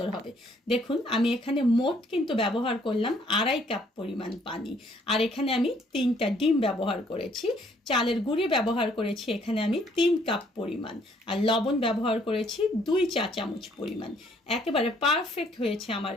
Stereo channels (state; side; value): normal; both; correlation 0.65